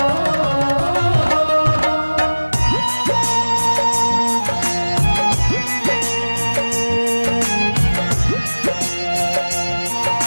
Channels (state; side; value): inverted; both; correlation -1.00